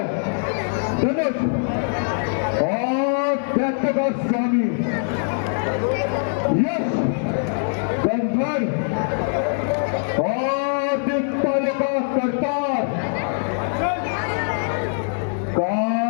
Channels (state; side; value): silent; right; digital silence